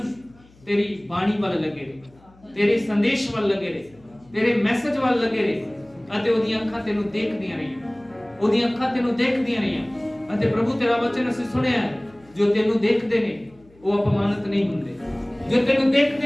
ਤੇਰੀ ਬਾਣੀ ਵੱਲ ਲੱਗੇ ਰਹੇ, ਤੇਰੇ ਸੰਦੇਸ਼ ਵੱਲ ਲੱਗੇ ਰਹੇ, ਤੇਰੇ ਮੈਸੇਜ ਵੱਲ ਲੱਗੇ ਰਹੇ, ਅਤੇ ਉਹਦੀਆਂ ਅੱਖਾਂ ਤੈਨੂੰ ਦੇਖਦੀਆਂ ਰਹੀਆਂ। ਉਹਦੀਆਂ ਅੱਖਾਂ ਤੈਨੂੰ ਦੇਖਦੀਆਂ ਰਹੀਆਂ। ਅਤੇ ਪ੍ਰਭੂ ਤੇਰਾ ਵਚਨ ਅਸੀਂ ਸੁਣਿਆ ਹੈ, ਜੋ ਤੈਨੂੰ ਦੇਖਦੇ ਨੇ ਉਹ ਅਪਮਾਨਿਤ ਨਹੀਂ ਹੁੰਦੇ, ਜੋ ਤੈਨੂੰ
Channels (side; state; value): left; noise; hum, 28 dB below the sound